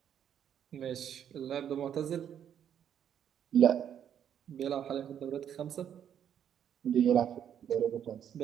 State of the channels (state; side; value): quieter; left; 9.2 dB